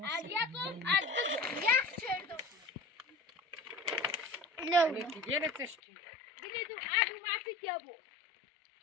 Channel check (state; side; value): drops out; right; at 5.8 s